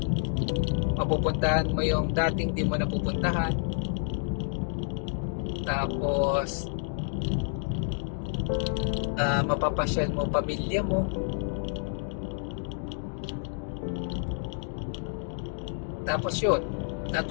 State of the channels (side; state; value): right; silent; digital silence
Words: mapupuntahan mo yung dating di mo napupuntahan, tapos mapapasyal mo pamilya mo, tapos yun,